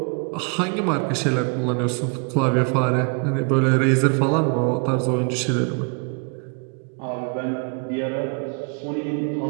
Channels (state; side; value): quieter; left; 35.4 dB